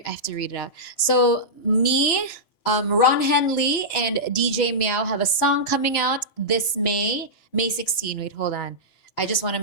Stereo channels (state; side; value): late; right; 2.9 ms